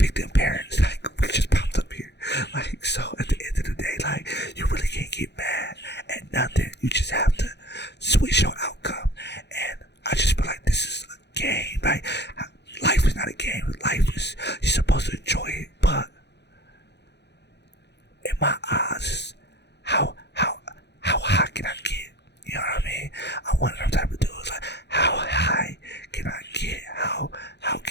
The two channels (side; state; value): right; late; 0.50 ms